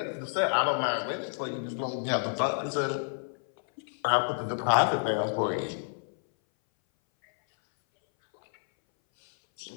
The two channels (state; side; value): silent; right; 58 dB below the other